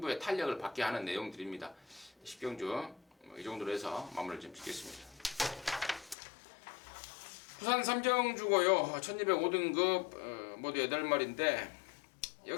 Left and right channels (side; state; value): right; drops out; at 6.2 s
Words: 탄력을 받게 하는 내용들입니다. 10경주 이 정도로 해서 마무리를 좀 짓겠습니다. 부산 3경주고요. 1205등급 모두 8마리인데,